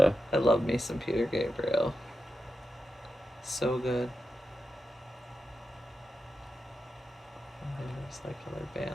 I love me some Peter Gabriel. So good. And there's like other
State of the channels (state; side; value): normal; both; correlation 0.88